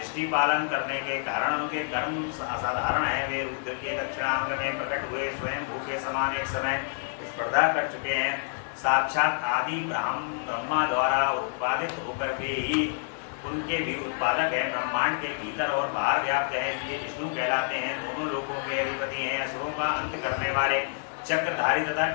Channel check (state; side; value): silent; right; digital silence